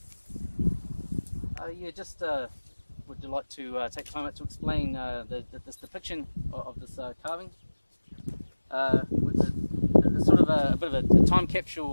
Yeah, just would you like to take time out to explain this depiction of this carving? It's sort of a bit of a time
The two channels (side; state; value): both; inverted; correlation -1.00